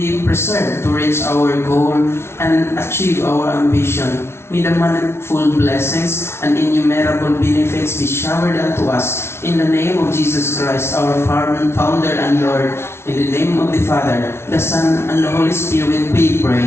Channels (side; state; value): right; late; 0.12 ms